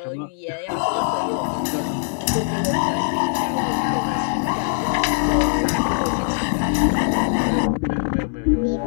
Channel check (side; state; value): right; silent; digital silence